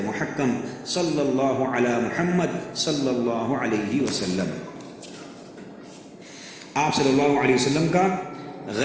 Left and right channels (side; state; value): both; identical; correlation 1.00